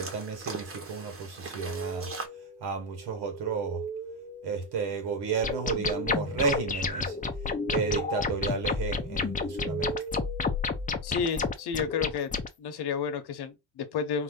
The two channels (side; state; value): both; normal; correlation 0.09